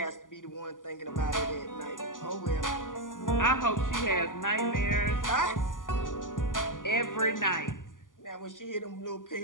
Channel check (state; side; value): late; right; 0.88 ms